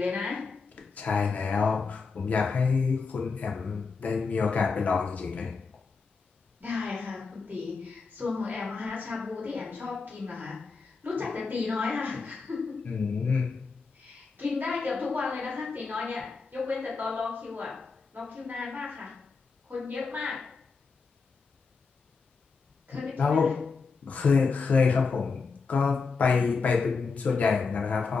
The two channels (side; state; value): right; quieter; 4.7 dB